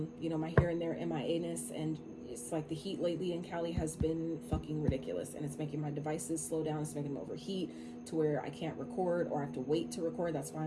my here and there MIA-ness, and it's like the heat lately in Cali has been fucking ridiculous, and it's making my devices slow down. It's making them overheat to where I can't record, or I have to wait to record. That's why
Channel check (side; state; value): both; identical; correlation 1.00